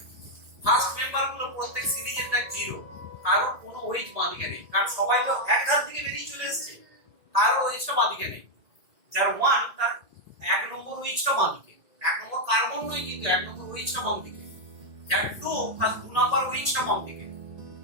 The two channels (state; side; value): late; left; 1.8 ms